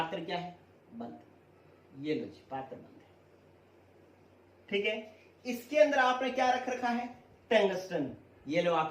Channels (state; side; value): identical; both; correlation 1.00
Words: क्या है? बंद। ये लो जी, पात्र बंद है। ठीक है, इसके अंदर आपने क्या रख रखा है? टंगस्टन। ये लो